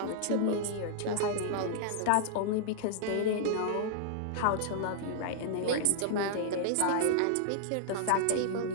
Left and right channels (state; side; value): different; both; correlation -0.01